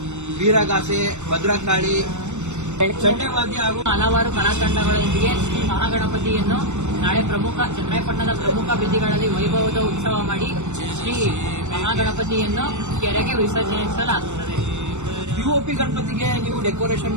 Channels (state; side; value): late; left; 0.83 ms